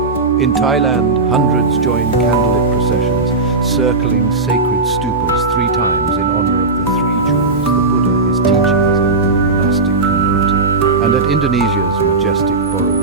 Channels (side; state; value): left; quieter; 3.6 dB